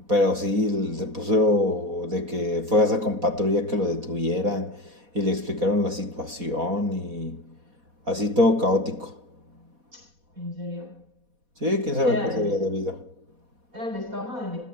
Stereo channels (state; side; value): late; left; 4.1 ms